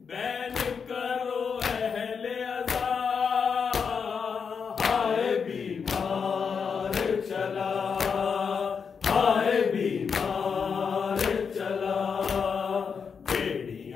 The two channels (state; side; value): quieter; right; 6.1 dB